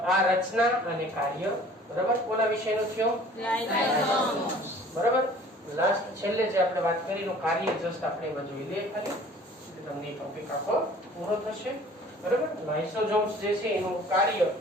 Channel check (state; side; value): normal; both; correlation 0.50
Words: આ રચના અને કાર્ય બરાબર કોના વિષયનો થયો બરાબર લાસ્ટ છેલ્લે જે આપણે વાત કરી નું કાર્ય જસ્ટ આપણે એમાં જોઈ લઈએ ખાલી તમને ટોપિક આખો પૂરો થશે બરાબર લાઇસોસોમ્સ જે છે એનું કાર્ય